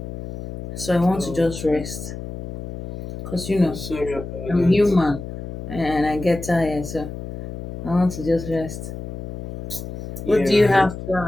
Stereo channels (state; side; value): noise; left; hum, 9 dB below the sound